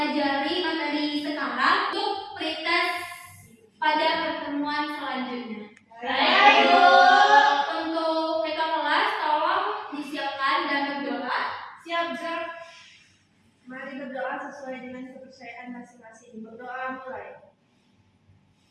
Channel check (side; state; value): both; identical; correlation 1.00